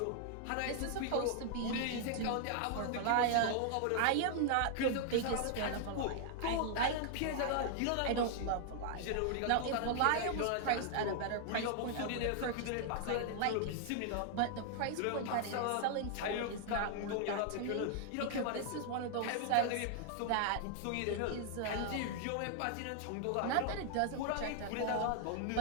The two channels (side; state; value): both; different; correlation -0.01